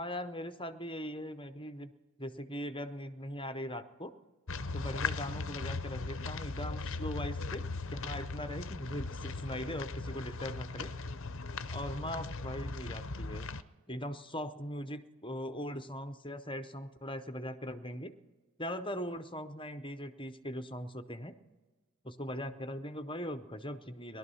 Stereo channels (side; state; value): both; normal; correlation 0.56